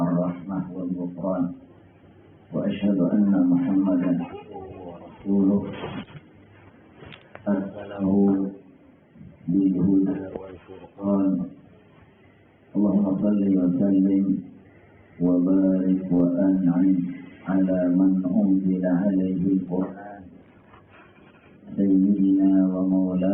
ar-rahmah wal ghufran. Wa asyhadu anna Muhammadan rasuluh arsalahu bil huda wal furqan. Allahumma shalli wa sallim wa barik wa an'im ala man unzila alaihi al-Qur'an sayyidina wa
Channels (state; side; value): identical; both; correlation 1.00